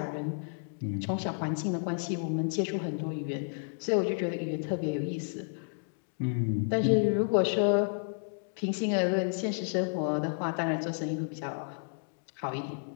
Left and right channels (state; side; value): silent; right; digital silence